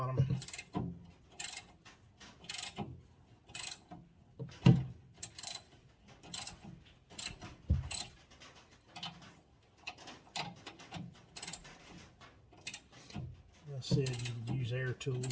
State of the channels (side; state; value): both; identical; correlation 1.00